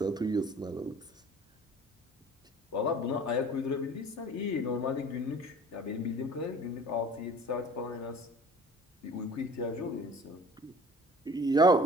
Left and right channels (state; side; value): normal; both; correlation 0.46